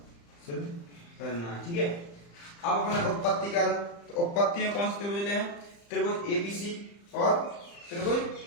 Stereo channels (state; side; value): late; right; 35 ms